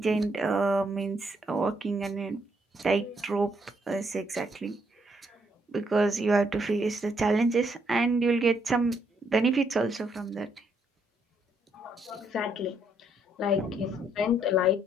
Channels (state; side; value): normal; both; correlation 0.73